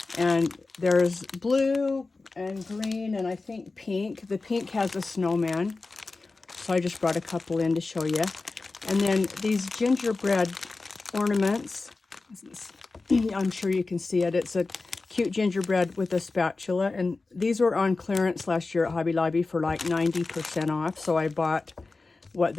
and there's blue and green and I think pink. The pink has a snowman, so I just brought a couple in to show you. And then these gingerbread ornaments. I'm sure you can see it. It's a cute gingerbread with a spatula, and these were on clearance last year at Hobby Lobby for like 90% off, so I bought what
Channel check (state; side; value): quieter; right; 3.7 dB